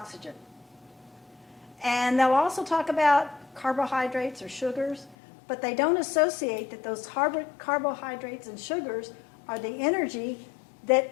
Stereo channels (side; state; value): right; drops out; at 5.2 s